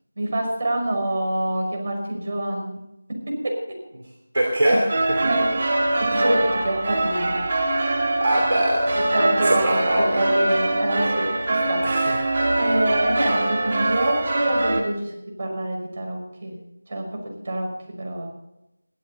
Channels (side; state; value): both; inverted; correlation -0.95